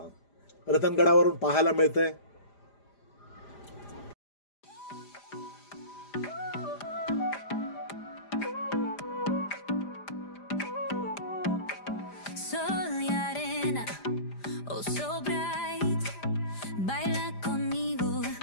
रतनगडावरून पाहायला मिळतंय.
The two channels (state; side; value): late; right; 5.0 ms